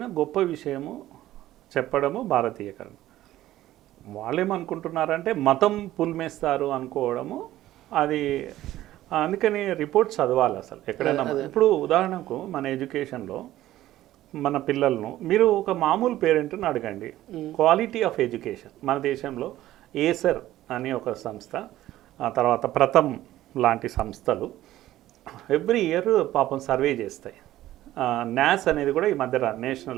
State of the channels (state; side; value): quieter; left; 14.5 dB